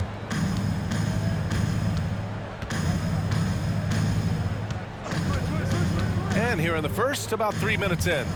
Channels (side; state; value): both; identical; correlation 1.00